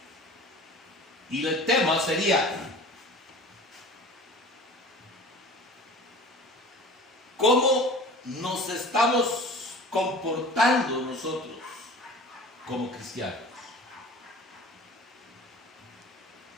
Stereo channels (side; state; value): both; normal; correlation 0.41